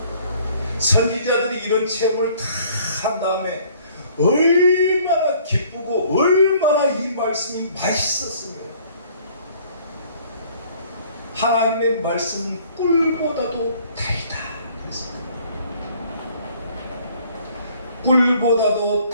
선지자들이 이런 체험을 다 한 다음에 얼마나 기쁘고 얼마나 이 말씀이 맛있었으며 하나님의 말씀은 꿀보다도 달다. 꿀보다도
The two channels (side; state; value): both; inverted; correlation -0.57